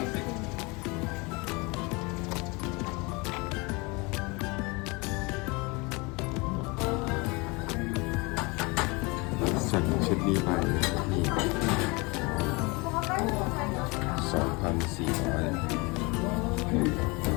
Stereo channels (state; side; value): quieter; right; 26.9 dB